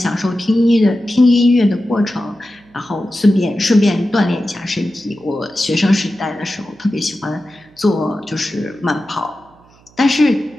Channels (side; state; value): right; noise; hum, 29 dB below the sound